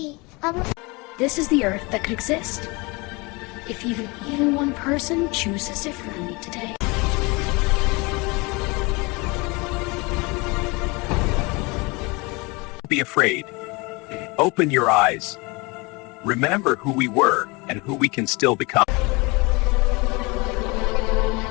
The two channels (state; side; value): quieter; right; 26.4 dB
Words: This is the Earth that could exist if even one person chooses differently today. Don't be afraid. Open your eyes. Remember who we were and who we can still become.